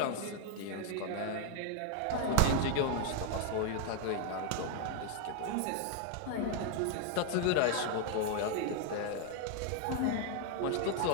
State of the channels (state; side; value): different; both; correlation 0.00